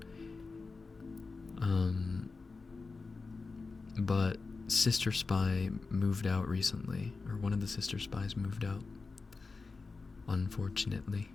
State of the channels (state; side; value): quieter; right; 4.1 dB